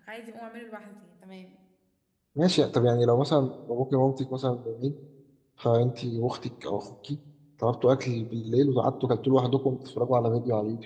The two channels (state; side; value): identical; both; correlation 1.00